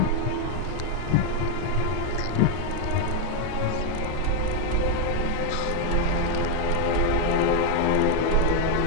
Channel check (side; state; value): both; different; correlation 0.01